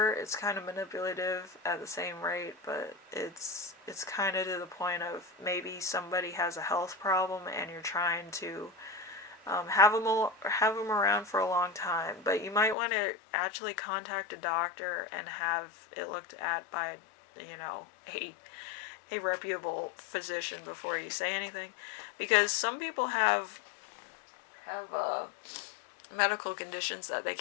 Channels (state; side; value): drops out; right; at 12.8 s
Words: It's kind of manipulative at the same rate, but it's kind of to the point of maybe somebody has a health problem and you're trying to have them around for a long time, but you might want to actually contact a doctor and have it looked at by, you know, a reputable physician before you say anything, because some people have medical conditions that they